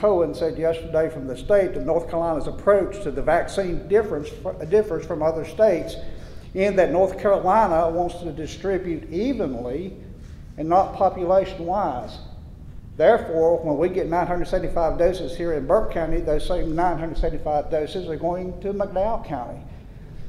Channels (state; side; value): identical; both; correlation 1.00